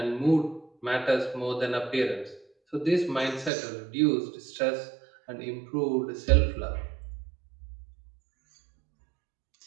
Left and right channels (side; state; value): left; drops out; at 3.5 s